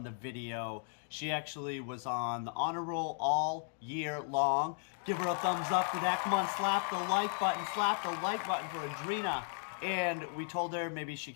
the video. She actually was on the honor roll all year long. Give her a thumbs up for that. Come on, slap the like button. Slap the like button for Adrina. And we told her maybe she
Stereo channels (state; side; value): silent; right; 54 dB below the other